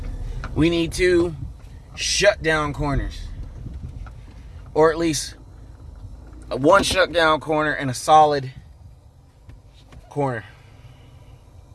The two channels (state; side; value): identical; both; correlation 1.00